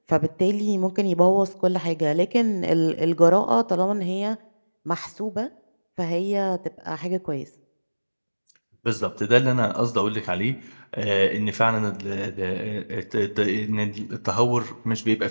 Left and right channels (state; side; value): inverted; both; correlation -1.00